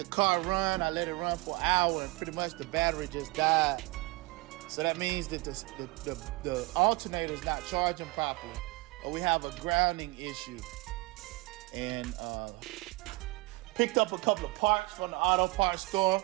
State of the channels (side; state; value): left; quieter; 23.1 dB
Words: car run, I let it run for an hour, and pretty much the battery just died. So that means that the alternator is not charging properly, or we have a grounding issue. And picked up a couple of parts from the auto parts store.